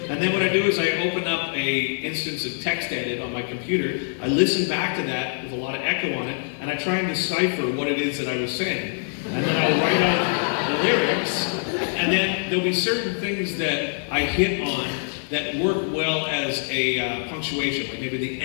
And then what I do is I open up a instance of text edit on my computer. I listen back to that with a lot of echo on it, and I try and decipher what it is that I was saying. And then I'll write out the lyrics, and then there'll be certain things that I hit on that work well as a punctuation, like maybe the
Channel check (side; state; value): right; silent; 57 dB below the other